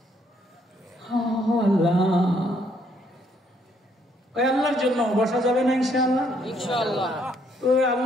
আল্লাহ ওই আল্লাহর জন্য বসা যাবে না ইনশাআল্লাহ? ইনশাআল্লাহ। তো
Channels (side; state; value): both; normal; correlation 0.69